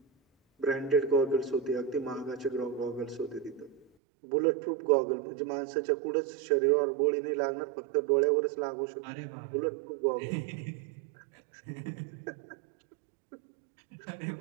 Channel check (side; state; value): left; drops out; at 3.9 s